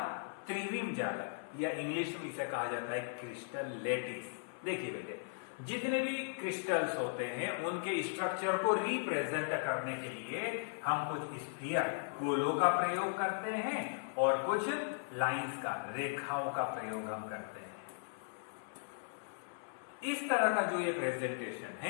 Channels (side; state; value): right; silent; 53 dB below the other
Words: त्रिविम जालक या इंग्लिश में इसे कहा जाता है क्रिस्टल लेटिस। देखिए बेटे जितने भी क्रिस्टल्स होते हैं उनके स्ट्रक्चर को रिप्रेजेंट करने के लिए हम कुछ स्फीयर गोलों का प्रयोग करते हैं और कुछ लाइंस का रेखाओं का प्रयोग हम करते हैं। इस तरह का जो ये प्रेजेंटेशन